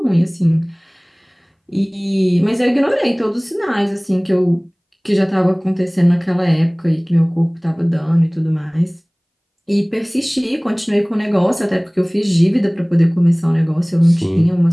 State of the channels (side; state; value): both; identical; correlation 1.00